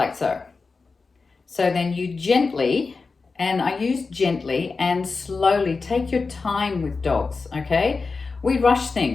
so. So then you gently, and I use gently and slowly, take your time with dogs, okay? We rush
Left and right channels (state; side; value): quieter; right; 4.3 dB